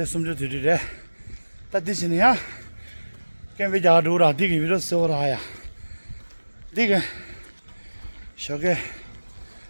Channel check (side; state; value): both; inverted; correlation -1.00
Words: 숨좀 들이래. 다 드시냐? 그럼 이제 아루라 디기 위로서라야. 디게 저게